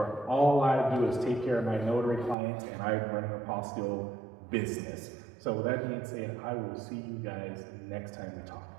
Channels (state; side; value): drops out; left; at 2.4 s